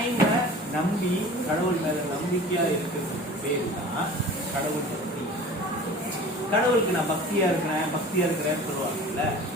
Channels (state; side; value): normal; both; correlation 0.41